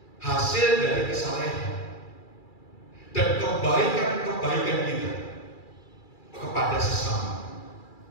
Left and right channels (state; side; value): late; right; 2.3 ms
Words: hasil dari kesalehan dan kebaikan-kebaikan kita kepada sesama.